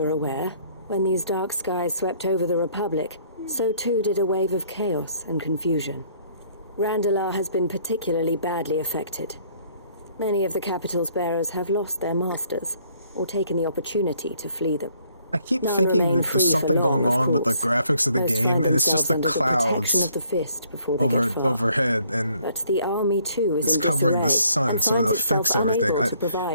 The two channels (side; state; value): both; inverted; correlation -0.63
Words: aware, when these dark skies swept over the Republic, so too did a wave of chaos and confusion. Randalar has been particularly badly affected. Many of the capital's bearers have lost their masters, or taken the opportunity to flee them. I keep thinking that there's something going on with the graphics of the game, and it's just the clouds overhead, and but the army too is it's covering the sun, so it affects everything.